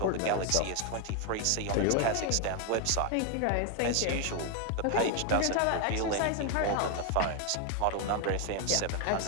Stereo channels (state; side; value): different; both; correlation 0.01